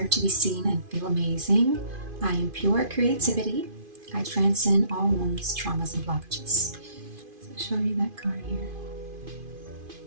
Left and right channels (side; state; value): left; late; 2.5 ms